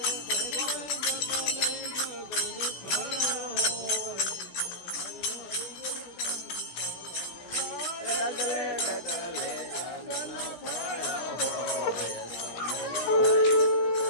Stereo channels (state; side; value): late; right; 16 ms